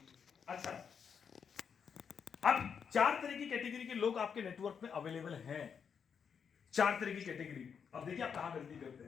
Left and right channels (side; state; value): right; quieter; 6.9 dB